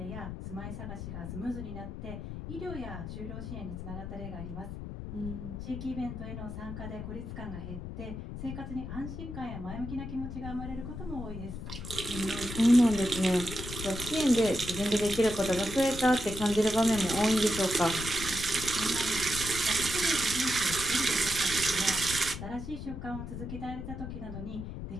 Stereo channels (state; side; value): noise; left; rumble, 8 dB below the sound